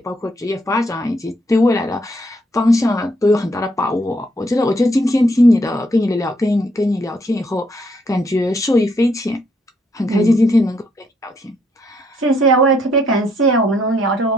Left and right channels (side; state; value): both; normal; correlation 0.72